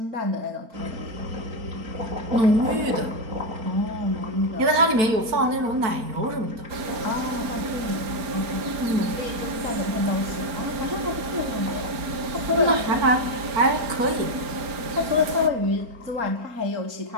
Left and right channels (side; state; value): left; late; 4.4 ms